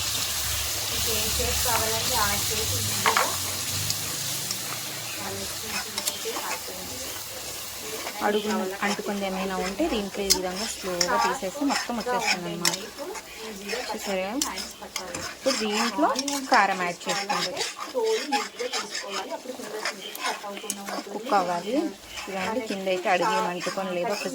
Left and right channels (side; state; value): both; identical; correlation 1.00